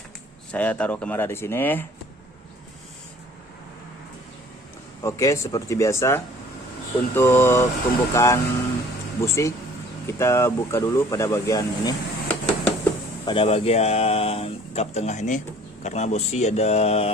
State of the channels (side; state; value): both; normal; correlation 0.52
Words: saya taruh kamera di sini. Oke, seperti biasa untuk pembukaan busi kita buka dulu pada bagian ini. Pada bagian kap tengah ini, karena busi ada